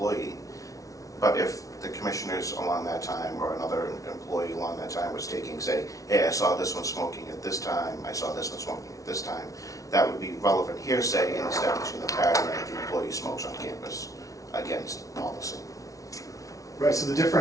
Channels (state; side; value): late; right; 0.17 ms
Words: But if the commissioners along that time or another employee along that time was taking, say, hey, I saw this one smoking at this time, I saw this one smoking at this time, that would be relevant hearsay in establishing the pattern that the employee smokes on campus against policy. Right, so the